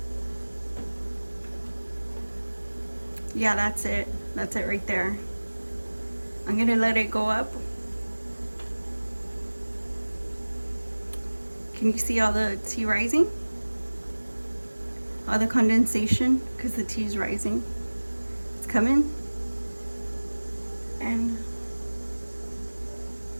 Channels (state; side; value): inverted; both; correlation -1.00